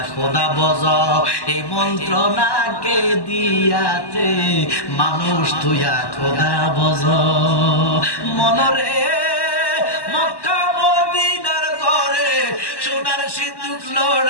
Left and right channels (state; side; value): late; right; 1.1 ms